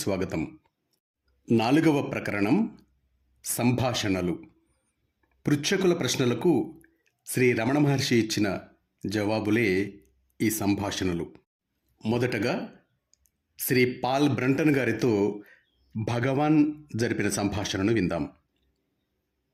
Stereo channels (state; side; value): identical; both; correlation 1.00